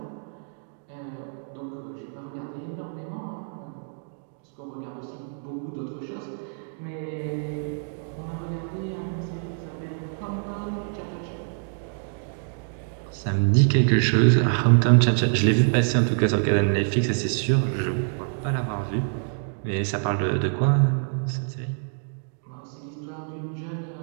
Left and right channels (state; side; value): silent; left; digital silence